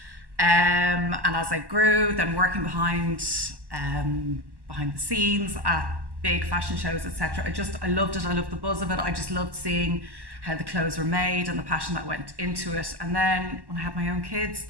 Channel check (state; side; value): late; left; 1.1 ms